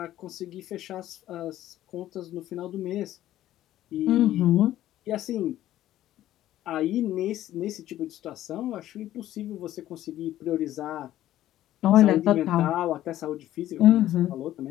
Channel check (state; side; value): quieter; right; 13.4 dB